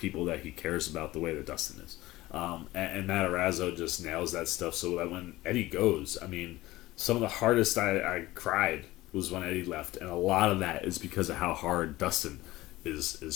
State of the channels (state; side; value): quieter; right; 17.9 dB